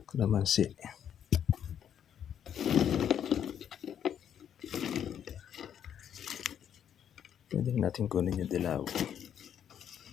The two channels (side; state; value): right; quieter; 9.2 dB